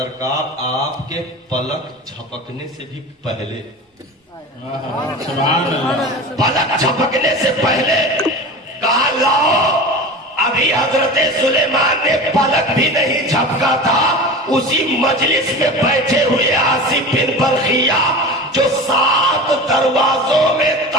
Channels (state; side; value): normal; both; correlation 0.32